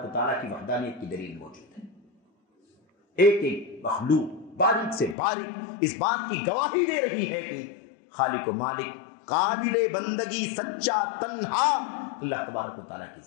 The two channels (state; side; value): drops out; right; at 5.2 s